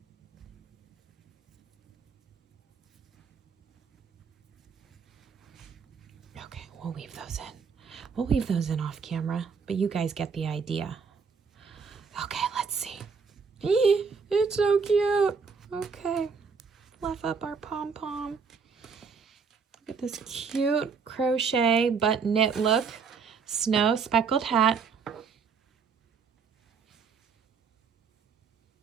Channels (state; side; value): quieter; left; 5.6 dB